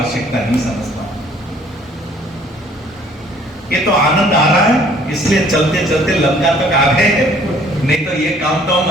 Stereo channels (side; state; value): both; normal; correlation 0.58